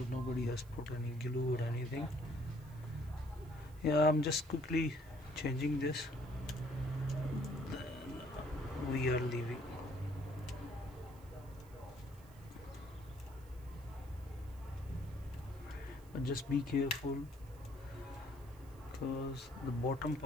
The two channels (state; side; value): noise; right; hiss, 26 dB below the sound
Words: nobody has put any glue or anything. Yeah, I'm just quickly changing this, then we are leaving. But just be careful because the bottom